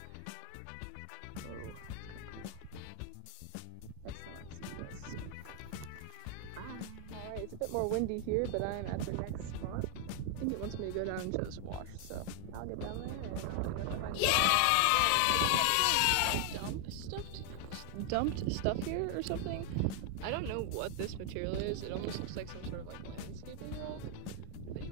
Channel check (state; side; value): different; both; correlation 0.00